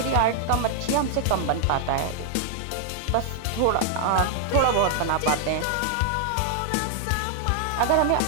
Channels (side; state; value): both; different; correlation -0.01